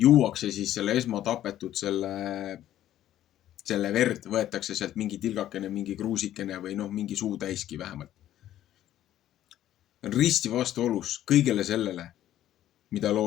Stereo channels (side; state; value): right; quieter; 12.5 dB